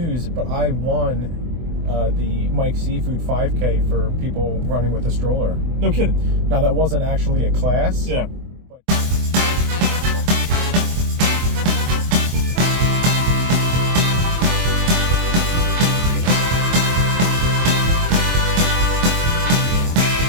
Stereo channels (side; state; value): left; late; 24 ms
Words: but I won the Mike Seafood 5K for people running with a stroller. No kidding. Now, that wasn't actually a class. Yeah.